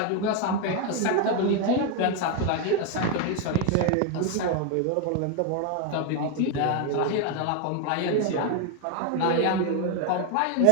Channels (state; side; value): different; both; correlation 0.01